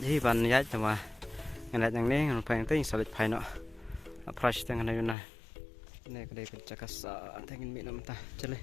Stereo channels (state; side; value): drops out; right; at 5.2 s